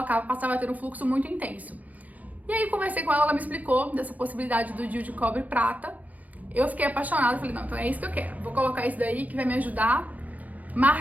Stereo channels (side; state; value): left; late; 0.074 ms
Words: passava a ter um fluxo muito intenso. E aí conversei com ela, ela me explicou dessa possibilidade do Dil de cobre prata. Eu fiquei apaixonada, falei, não, então é isso que eu quero, vou colocar isso daí que vai me ajudar.